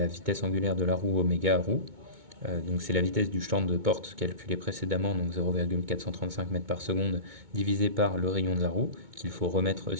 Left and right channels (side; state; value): left; late; 2.2 ms